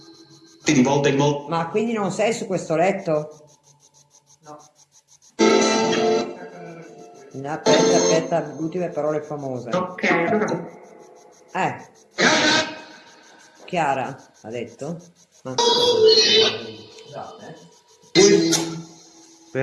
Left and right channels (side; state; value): both; identical; correlation 1.00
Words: Di volta in volta. Ma quindi non sei su questo letto? No. Aspetta, ultime parole famose. Ok, allora. Chiara ha detto?